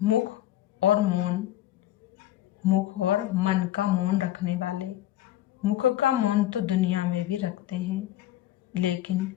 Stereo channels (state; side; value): quieter; right; 13.7 dB